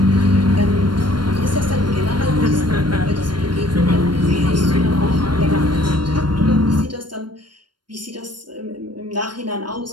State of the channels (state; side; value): late; left; 0.71 ms